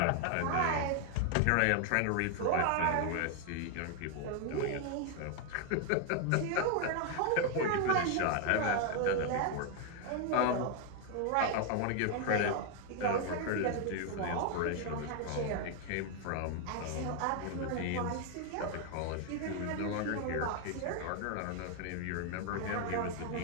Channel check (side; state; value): both; different; correlation 0.00